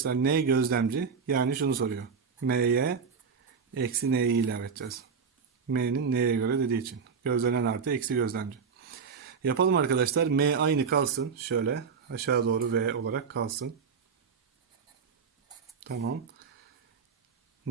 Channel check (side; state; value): left; quieter; 5.9 dB